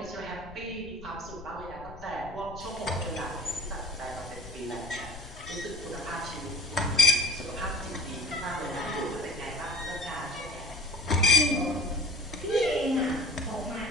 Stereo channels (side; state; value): left; noise; rumble, 16 dB below the sound